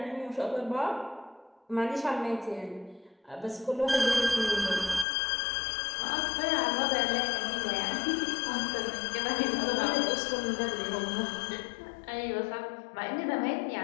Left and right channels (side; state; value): right; drops out; at 5.1 s